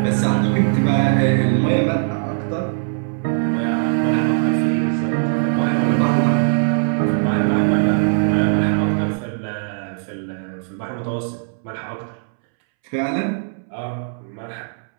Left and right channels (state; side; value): silent; left; 66 dB below the other